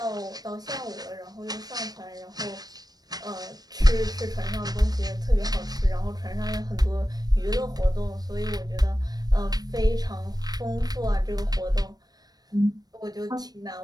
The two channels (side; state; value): left; late; 0.19 ms